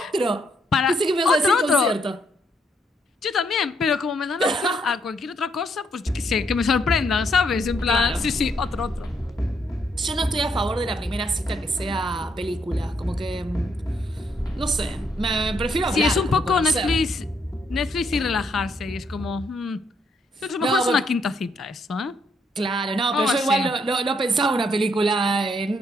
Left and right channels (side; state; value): both; normal; correlation 0.74